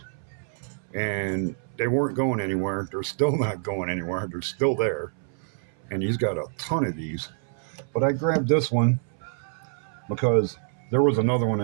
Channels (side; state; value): left; silent; 60 dB below the other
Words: and they weren't going anywhere. They're still not going anywhere. They're still there, and he's got a ton of these. But I grabbed this one because there was another one